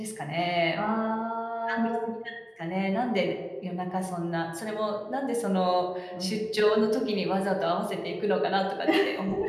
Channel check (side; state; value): both; identical; correlation 1.00